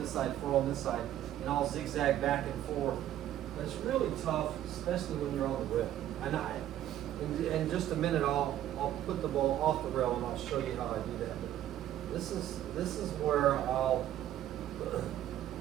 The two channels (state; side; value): quieter; left; 12.2 dB